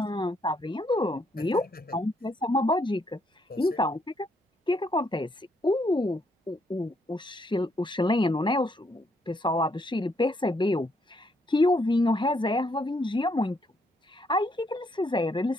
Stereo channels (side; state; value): both; normal; correlation 0.73